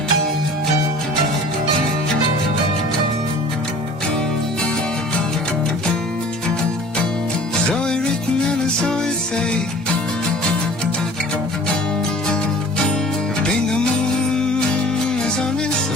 Zoe written and a Zoe say, think the moon is on its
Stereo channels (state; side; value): normal; both; correlation 0.46